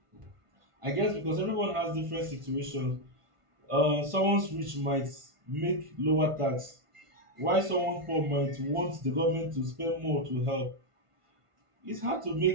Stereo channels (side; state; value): left; late; 1.5 ms